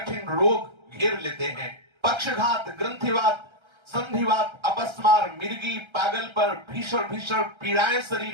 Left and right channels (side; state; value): left; late; 1.3 ms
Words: रोग घेर लेते हैं। पक्षघात, ग्रंथिवात, संधिवात, अपस्मार, मिर्गी, पागल पर, भीषण भीषण पीड़ाएं